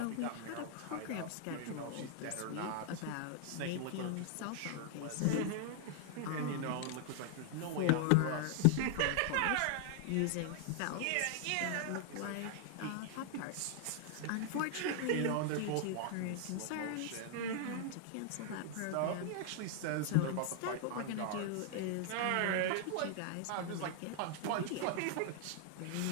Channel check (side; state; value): both; different; correlation 0.00